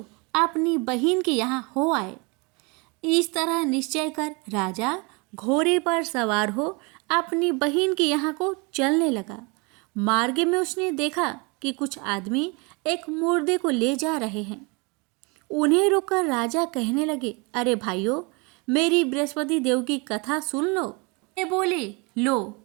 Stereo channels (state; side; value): quieter; left; 29.7 dB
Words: अपनी बहन के यहाँ हो आए। इस तरह निश्चय कर राजा घोड़े पर सवार हो अपनी बहन के यहाँ को चलने लगा। मार्ग में उसने देखा कि कुछ आदमी एक मुर्दे को ले जा रहे हैं। उन्हें रोककर राजा कहने लगे, अरे भाइयों, मेरी बृहस्पति देव की कथा सुन लो। ये बोले, लो,